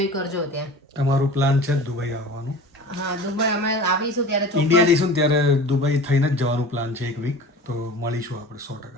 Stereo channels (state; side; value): normal; both; correlation 0.38